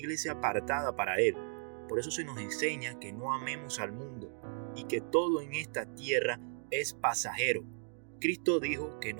apartada para Él. Por eso se nos enseña que no amemos al mundo y que todo en esta tierra es pasajero. Cristo dijo que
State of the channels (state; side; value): silent; left; 54 dB below the other